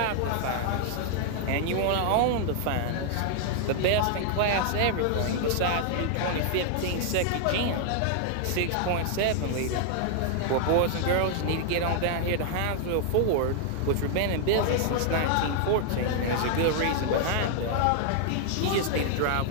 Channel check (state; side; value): different; both; correlation 0.00